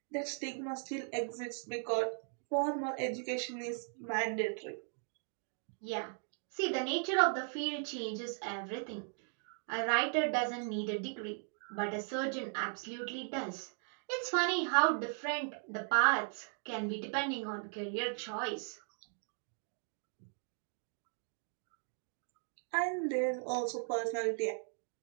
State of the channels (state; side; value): silent; left; 53 dB below the other